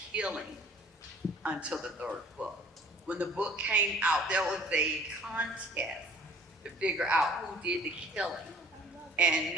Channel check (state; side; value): normal; both; correlation 0.53